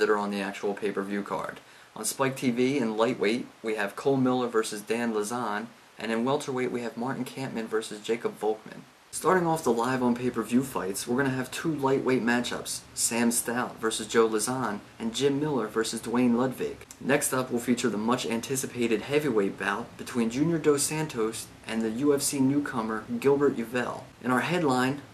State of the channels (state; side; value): identical; both; correlation 1.00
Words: are on the actual pay-per-view card. On Spike TV, in lightweight, we have Cole Miller versus Dan Lazan, and in welterweight, we have Martin Kampmann versus Jacob Volkman. Starting off the live on pay-per-view fights, we're going to have 2 lightweight matchups, Sam Stout versus Joe Lazan, and Jim Miller versus Duane Ludwig. Next up, we'll feature the much-anticipated heavyweight bout between Junior Dos Santos and the UFC newcomer Gilbert Yvel. In our headline,